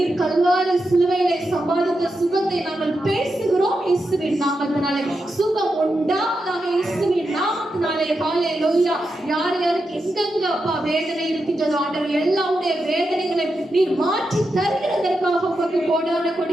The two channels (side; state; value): both; normal; correlation 0.87